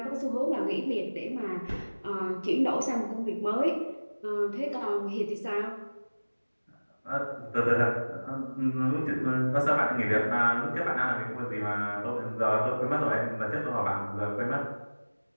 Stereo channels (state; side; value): inverted; both; correlation -1.00